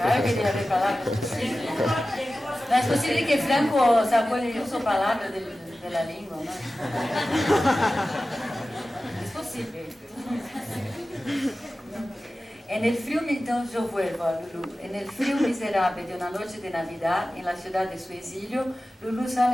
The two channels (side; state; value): both; normal; correlation 0.95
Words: que debe haber palabras. No es posible que Franco sacó el uso palabras de la lengua, ¿no? Es posible. En el frío, entonces yo vuelvo a Lulu. En el frío miserable de una noche de Navidad, en la ciudad de su exilio, Lulu